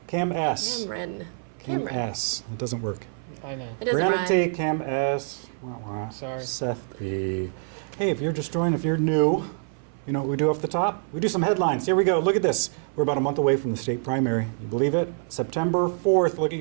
Cam S. Cameron. S. It doesn't work. I know. It doesn't Brianna rhyme. T. Cam S. Sorry. Seth B. Hey, if you're just joining, if you're new, you know what we do off the top? We do some headlines. Here we go. Look at this. We're about a month away from the state primary. You believe it? September 4th. Look at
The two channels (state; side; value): silent; left; 58 dB below the other